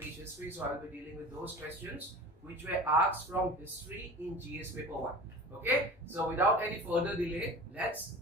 teach history, so I will be dealing with those questions which were asked from history in GS paper 1. Okay, so without any further delay, let's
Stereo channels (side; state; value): both; normal; correlation 0.37